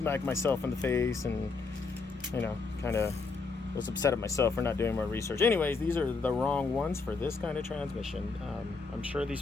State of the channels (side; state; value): right; quieter; 4.3 dB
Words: myself in the face, and kind of was upset at myself for not doing more research. Anyways, these are the wrong ones for this kind of transmission. I'm sure these